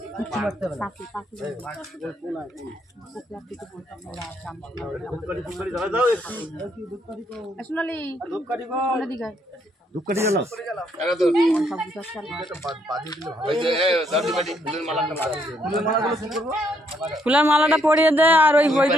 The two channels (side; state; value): both; normal; correlation 0.72